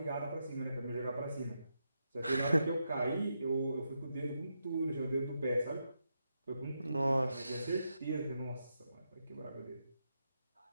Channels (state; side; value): inverted; both; correlation -0.84